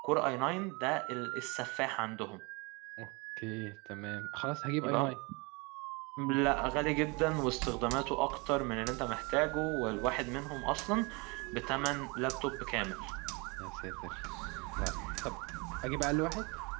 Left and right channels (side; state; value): left; quieter; 28.7 dB